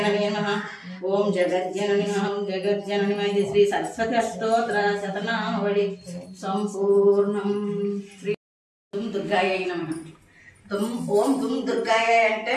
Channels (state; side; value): identical; both; correlation 1.00